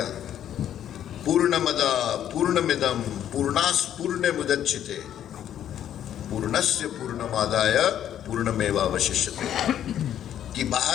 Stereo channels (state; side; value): quieter; right; 10.5 dB